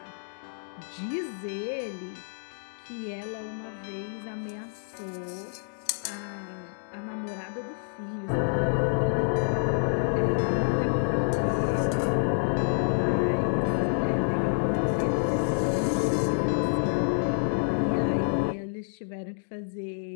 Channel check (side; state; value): right; silent; digital silence